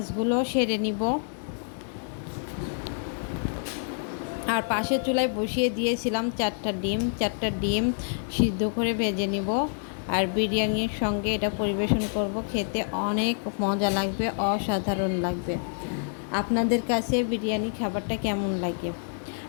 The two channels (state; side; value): silent; right; digital silence